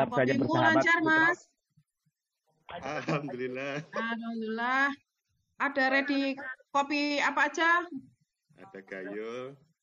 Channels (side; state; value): both; identical; correlation 1.00